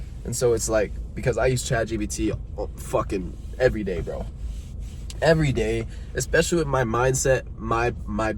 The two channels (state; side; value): identical; both; correlation 1.00